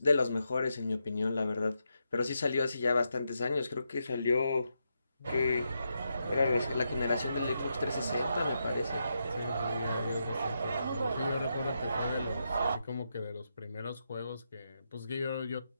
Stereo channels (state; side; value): inverted; both; correlation -0.83